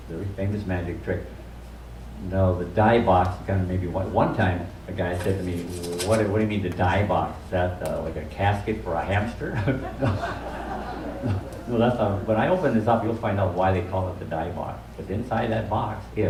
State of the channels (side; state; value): both; identical; correlation 1.00